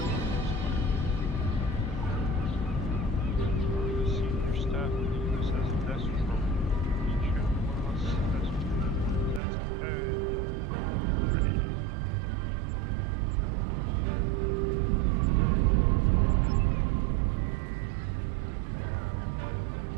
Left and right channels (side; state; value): left; drops out; at 9.4 s